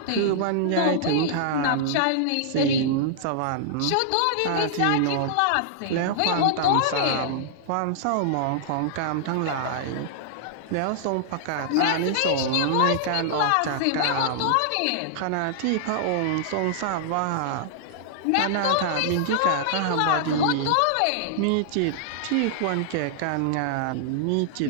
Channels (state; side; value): different; both; correlation -0.01